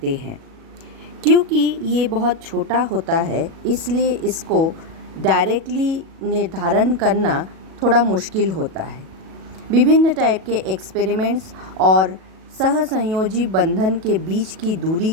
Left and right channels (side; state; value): left; late; 37 ms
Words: हैं। क्योंकि ये बहुत छोटा होता है, इसलिए इसको डायरेक्टली निर्धारण करना थोड़ा मुश्किल होता है। विभिन्न टाइप के एक्सपेरिमेंट्स और सहसंयोजी बंधन के बीच की दूरी